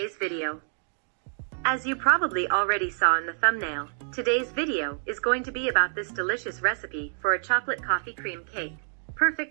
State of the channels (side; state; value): left; silent; 60 dB below the other